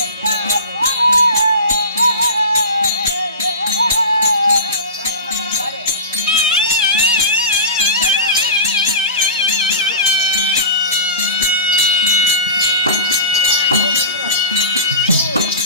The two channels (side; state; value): both; inverted; correlation -0.30